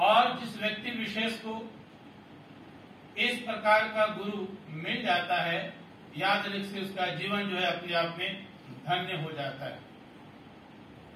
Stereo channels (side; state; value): both; identical; correlation 1.00